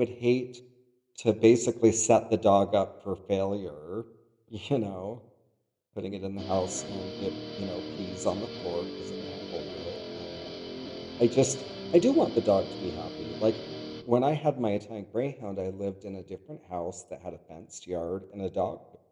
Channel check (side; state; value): both; identical; correlation 1.00